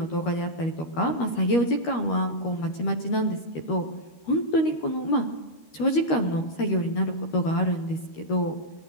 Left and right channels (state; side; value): late; right; 13 ms